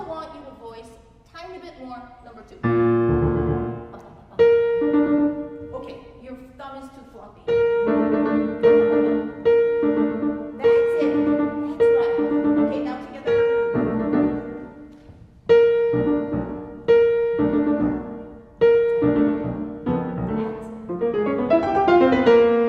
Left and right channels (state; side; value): identical; both; correlation 1.00